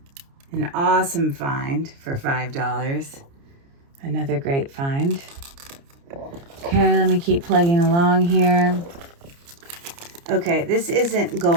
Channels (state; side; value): late; left; 29 ms